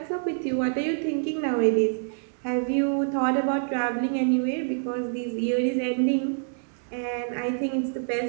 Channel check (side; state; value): left; silent; digital silence